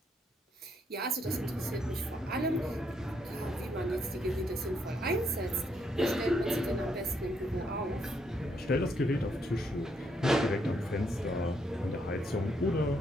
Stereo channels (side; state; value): both; normal; correlation 0.74